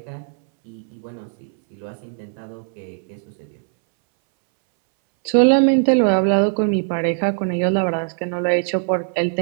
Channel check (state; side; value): silent; left; 63 dB below the other